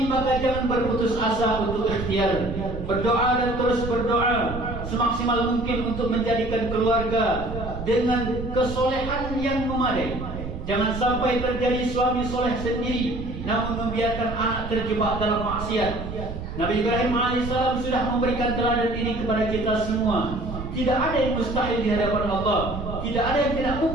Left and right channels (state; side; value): noise; right; rumble, 8 dB below the sound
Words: maka jangan berputus asa untuk ikhtiar, berdoa dan terus berdoa semaksimal mungkin untuk menjadikan keluarga dengan kesolehan yang memadai. Jangan sampai terjadi suami soleh sendiri namun membiarkan anak terjebak dalam maksiat. Nabi Ibrahim alaihissalam sudah memberikan teladan ini kepada kita semua. Tidak ada yang mustahil di hadapan Allah. Tidak ada yang tidak